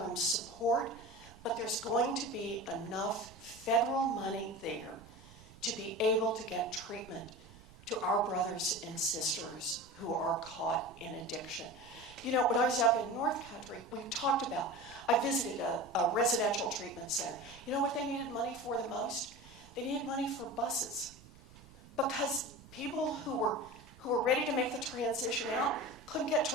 support? But there's going to be enough federal money there to be able to get treatment to our brothers and sisters who are caught in addiction. You know, when I was out in North Country, we talked about, I visited a residential treatment center. You know what they needed money for the most? They needed money for buses. Because people who were ready to make the transition out couldn't get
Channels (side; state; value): right; noise; rumble, 21 dB below the sound